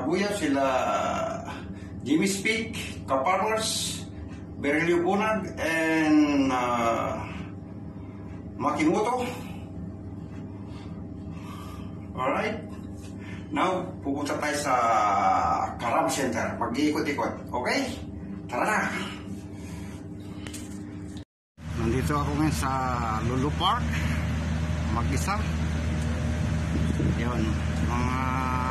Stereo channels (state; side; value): identical; both; correlation 1.00